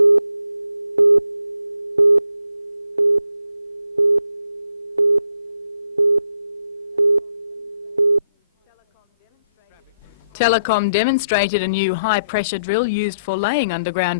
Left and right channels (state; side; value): inverted; both; correlation -0.73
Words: Telecom demonstrated a new high-pressure drill used for laying